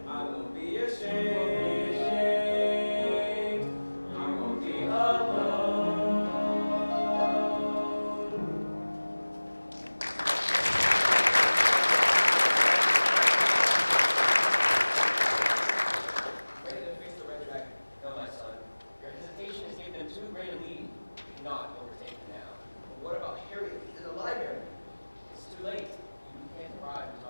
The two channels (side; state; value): both; inverted; correlation -1.00